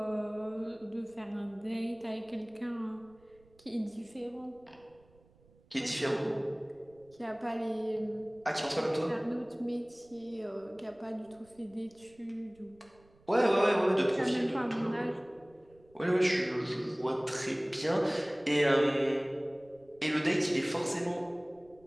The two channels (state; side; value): noise; right; rumble, 29 dB below the sound